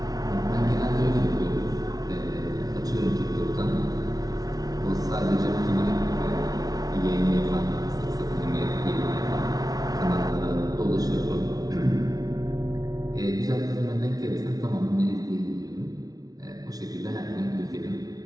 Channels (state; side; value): late; left; 0.18 ms